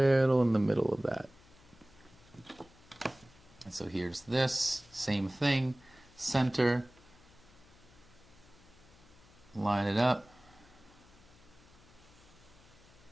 in the middle of that. And so here's this, same thing, center, line it up.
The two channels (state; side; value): noise; left; hum, 25 dB below the sound